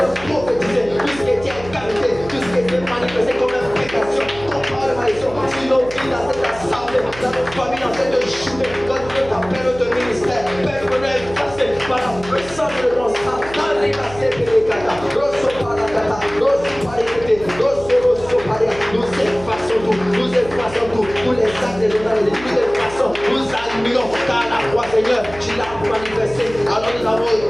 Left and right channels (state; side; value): noise; right; hum, 16 dB below the sound